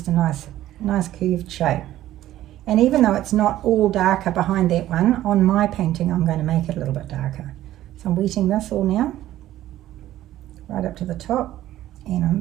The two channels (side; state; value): left; quieter; 13.8 dB